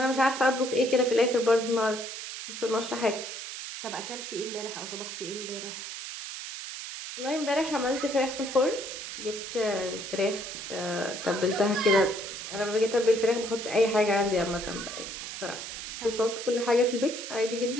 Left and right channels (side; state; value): right; noise; hiss, 8 dB below the sound